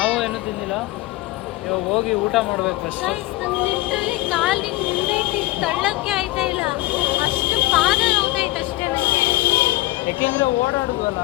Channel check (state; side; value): quieter; right; 18.8 dB